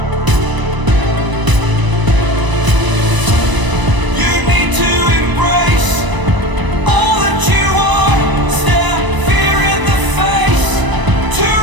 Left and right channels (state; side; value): late; left; 1.0 ms